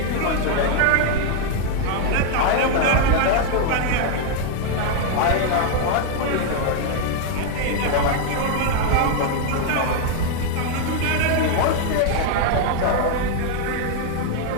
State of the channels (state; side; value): different; both; correlation 0.00